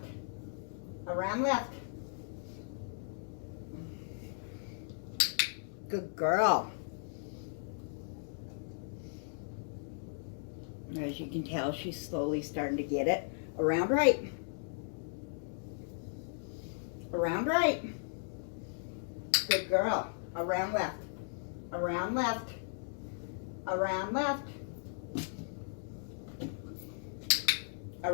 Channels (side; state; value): right; silent; digital silence